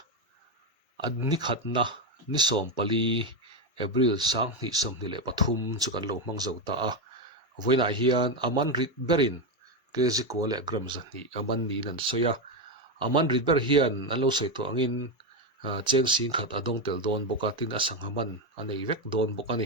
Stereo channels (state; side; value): normal; both; correlation 0.09